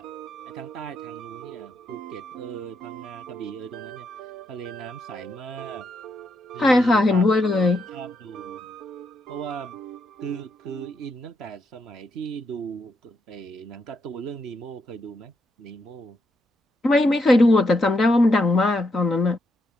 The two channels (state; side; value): normal; both; correlation 0.80